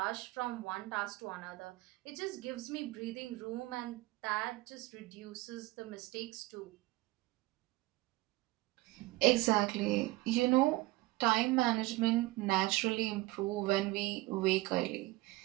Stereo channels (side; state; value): left; quieter; 20.2 dB